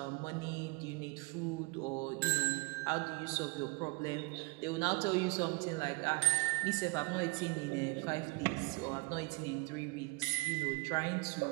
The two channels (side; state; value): left; quieter; 26.3 dB